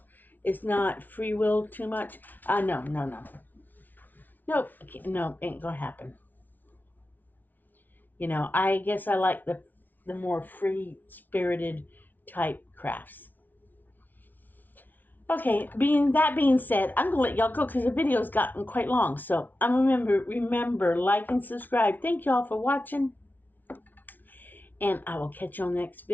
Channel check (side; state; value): right; late; 0.083 ms